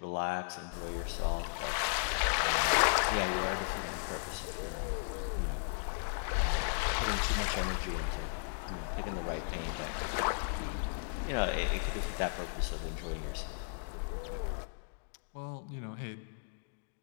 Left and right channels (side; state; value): right; silent; digital silence